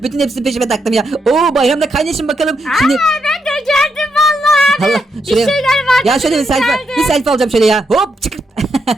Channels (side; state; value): both; normal; correlation 0.81